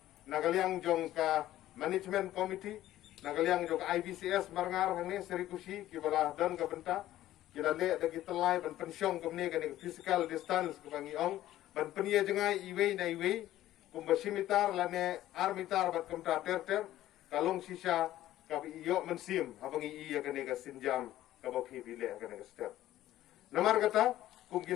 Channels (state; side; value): quieter; right; 14.0 dB